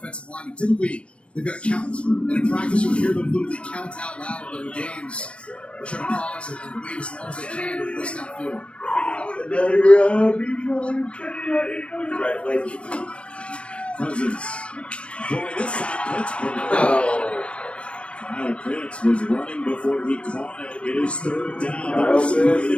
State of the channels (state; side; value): late; right; 0.060 ms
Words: line. Typically, they've got to count. And in practice, you'll hear them literally count out loud, but in games, they're trying to pause it and wait as long as they can to listen downfield. Congratulations. Cousins. Boy, this side Pittsburgh. Kyle Pitts was running before he caught it. It is third down. Right